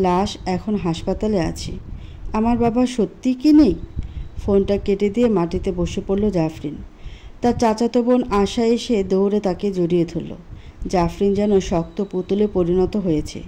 এখন হাসপাতালে আছে। আমার বাবা সত্যিই কি নেই? ফোনটা কেটে দিয়ে মাটিতে বসে পড়ল জাফরিন। তার চাচাতো বোন আশা এসে দৌড়ে তাকে জড়িয়ে ধরল। জাফরিন যেন শক্ত পুতুলে পরিণত হয়েছে।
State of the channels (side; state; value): both; identical; correlation 1.00